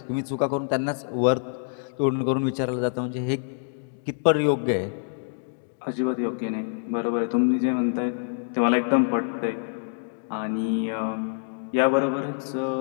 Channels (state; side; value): silent; right; digital silence